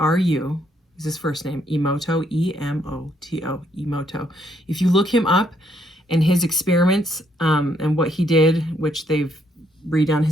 Is his first name, Emoto, E-M-O-T-O, Emoto. If you look him up, and his experiments, and what he did, which they've redone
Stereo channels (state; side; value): normal; both; correlation 0.72